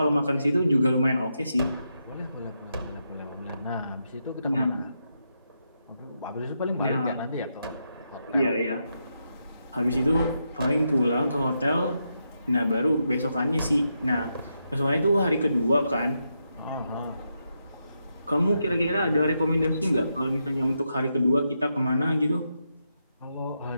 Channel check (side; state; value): both; inverted; correlation -0.83